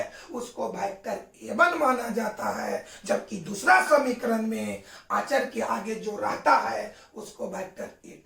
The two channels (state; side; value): identical; both; correlation 1.00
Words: उसको वेक्टर A1 माना जाता है, जबकि दूसरा समीकरण में अचर के आगे जो रहता है उसको वेक्टर